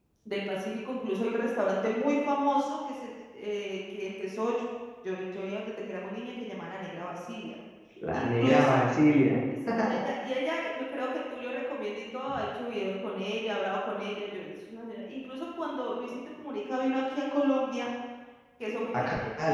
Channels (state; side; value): identical; both; correlation 1.00